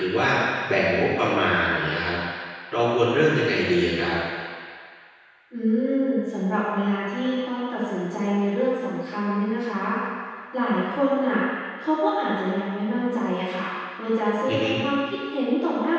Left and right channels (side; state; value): both; identical; correlation 1.00